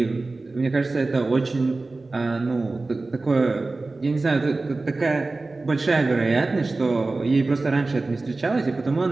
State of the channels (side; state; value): left; quieter; 3.4 dB